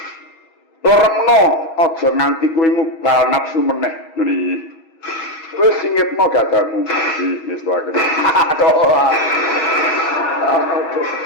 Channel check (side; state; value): right; late; 6.3 ms